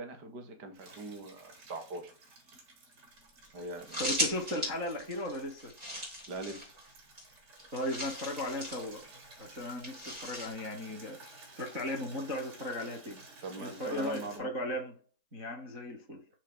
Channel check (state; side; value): late; left; 4.3 ms